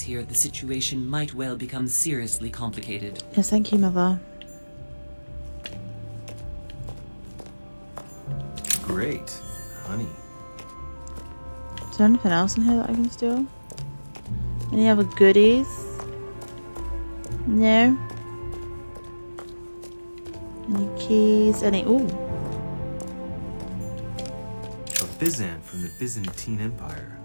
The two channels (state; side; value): inverted; both; correlation -1.00